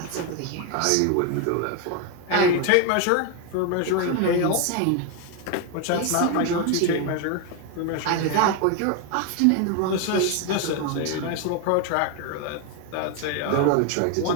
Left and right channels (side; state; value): both; different; correlation 0.01